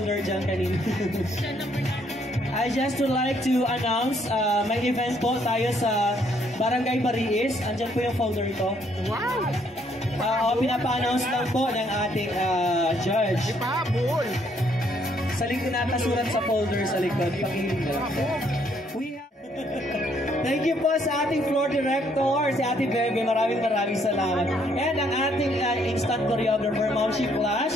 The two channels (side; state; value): both; normal; correlation 0.69